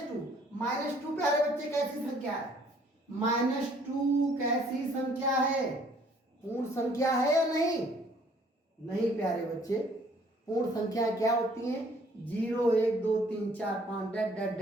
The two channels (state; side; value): normal; both; correlation 0.60